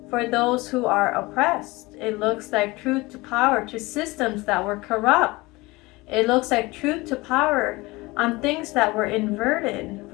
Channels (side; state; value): right; quieter; 22.2 dB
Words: for those who are oppressed. It looks like truth to power to systems that were corrupt. It looks like truth to power on things that were inverted